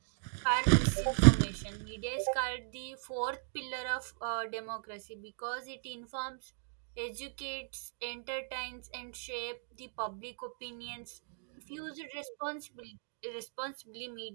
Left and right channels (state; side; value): silent; left; digital silence